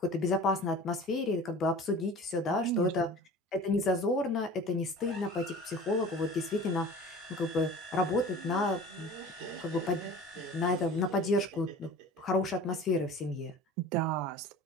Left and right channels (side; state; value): both; normal; correlation 0.40